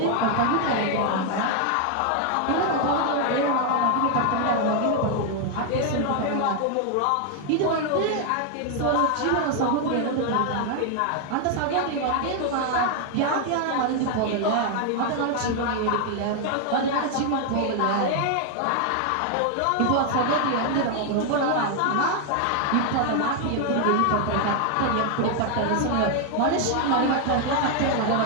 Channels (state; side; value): different; both; correlation 0.01